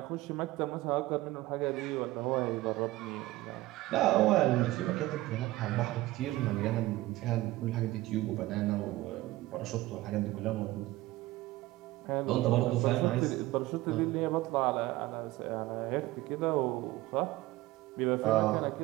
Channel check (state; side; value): quieter; left; 18.0 dB